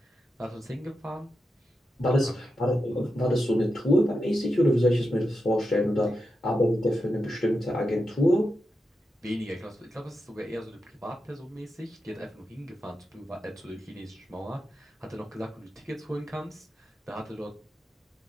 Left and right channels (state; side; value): normal; both; correlation 0.88